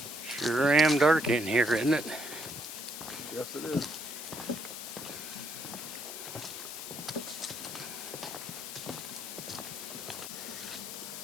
Sure am dark in here, isn't it? Yes, it is.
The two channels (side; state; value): left; noise; hiss, 8 dB below the sound